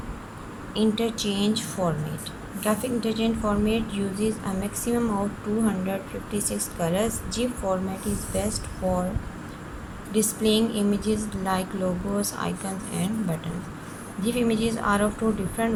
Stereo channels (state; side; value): identical; both; correlation 1.00